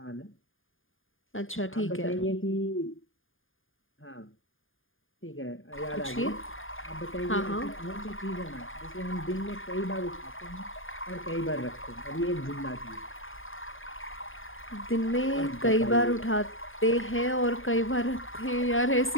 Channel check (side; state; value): right; late; 0.59 ms